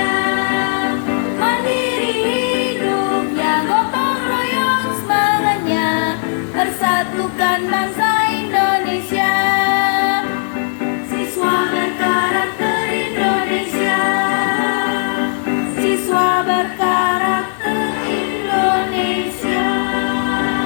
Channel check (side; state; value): right; silent; digital silence